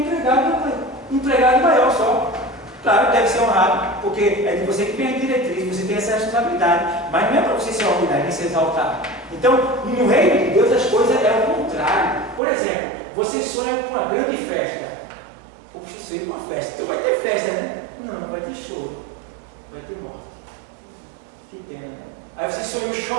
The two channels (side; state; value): left; drops out; at 12.4 s